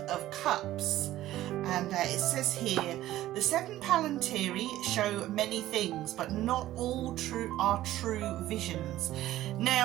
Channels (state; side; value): quieter; left; 14.6 dB